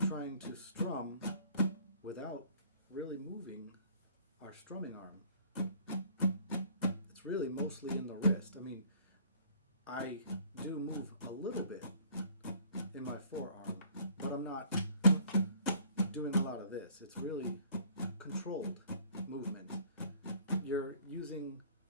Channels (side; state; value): both; inverted; correlation -0.54